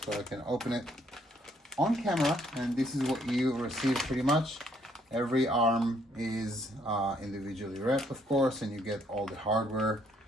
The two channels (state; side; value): normal; both; correlation 0.68